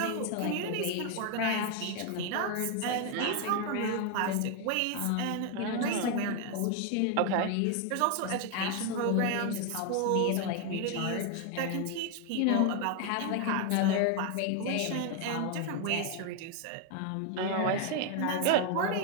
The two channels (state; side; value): different; both; correlation 0.01